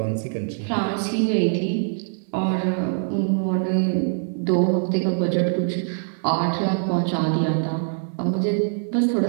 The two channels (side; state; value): left; silent; 62 dB below the other